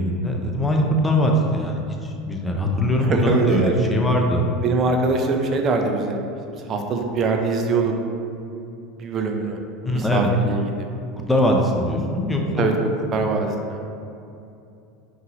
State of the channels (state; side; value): normal; both; correlation 0.36